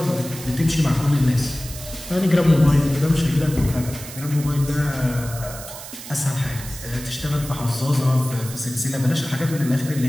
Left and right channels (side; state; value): right; noise; hiss, 13 dB below the sound